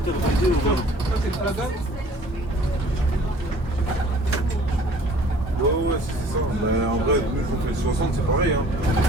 au moins. Ouais, c'est ça. Mais en vrai, nous, on fait 60, c'est pareil. Hein.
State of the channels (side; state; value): both; normal; correlation 0.52